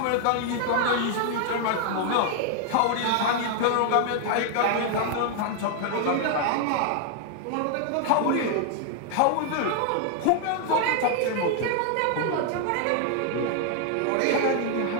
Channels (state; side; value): different; both; correlation 0.00